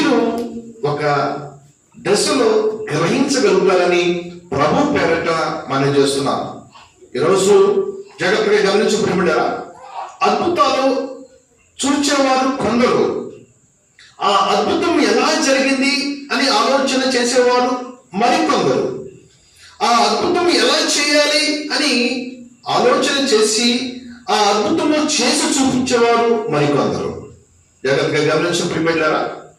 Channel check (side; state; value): both; identical; correlation 1.00